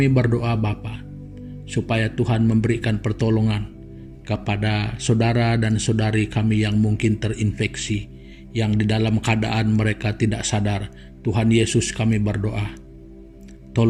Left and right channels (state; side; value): identical; both; correlation 1.00